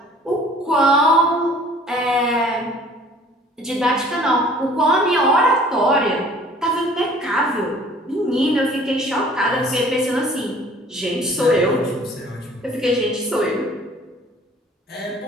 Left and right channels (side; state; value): both; normal; correlation 0.52